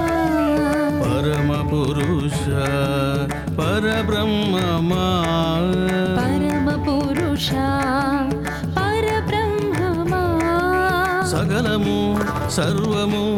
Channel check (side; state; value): both; identical; correlation 1.00